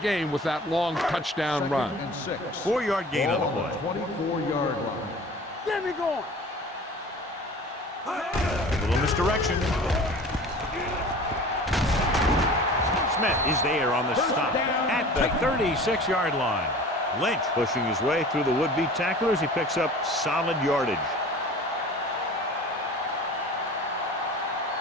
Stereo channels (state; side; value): normal; both; correlation 0.42